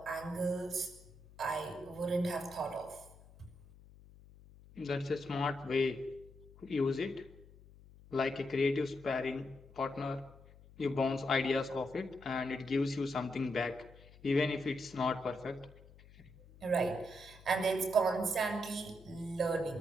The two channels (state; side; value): noise; left; hum, 22 dB below the sound